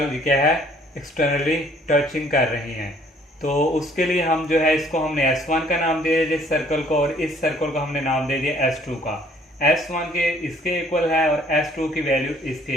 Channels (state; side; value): normal; both; correlation 0.59